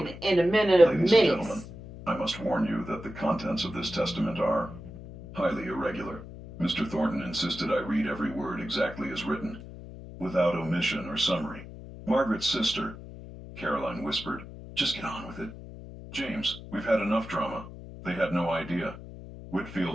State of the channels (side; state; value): left; noise; hum, 14 dB below the sound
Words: in a minute of Ladies and gentlemen, minutes. I must warn you that the contents of this testament are highly irregular. Mr. Thornton insisted I read every word exactly as written, without omission or summary. Margaret's sister, Caroline whispered, "Just get on with it." "James, we've had enough drama." They had no idea.